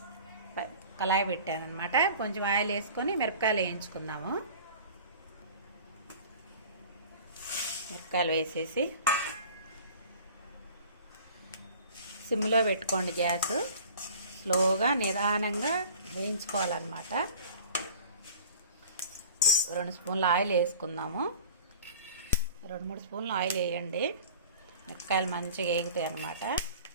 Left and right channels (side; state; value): both; inverted; correlation -0.44